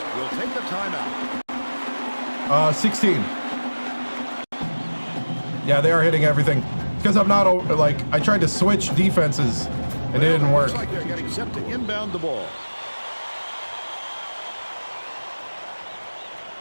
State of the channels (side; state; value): both; inverted; correlation -1.00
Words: will take the timeout. 16. Yeah, they are hitting everything. Because I'm not, like, I tried to switch defenses and it didn't work. Looks like they're getting set to inbound the ball.